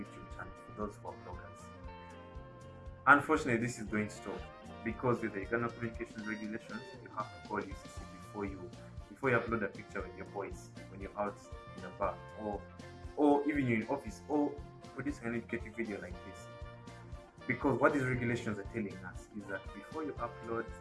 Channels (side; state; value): both; identical; correlation 1.00